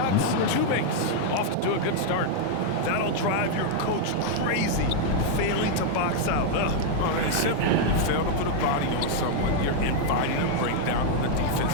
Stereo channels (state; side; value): different; both; correlation 0.00